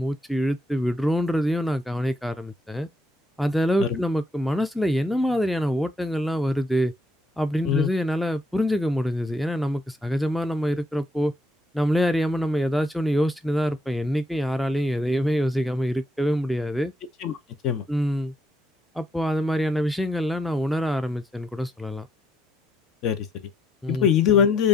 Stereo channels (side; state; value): both; normal; correlation 0.74